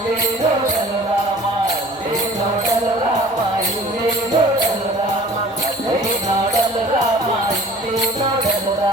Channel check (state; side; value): normal; both; correlation 0.46